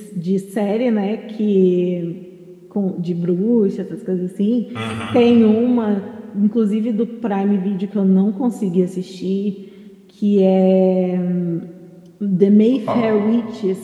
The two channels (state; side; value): identical; both; correlation 1.00